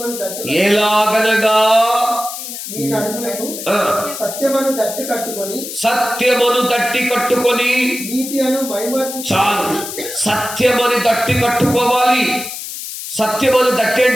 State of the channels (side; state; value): left; noise; hiss, 8 dB below the sound